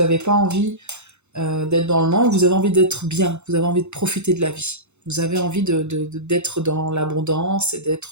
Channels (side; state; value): left; late; 0.82 ms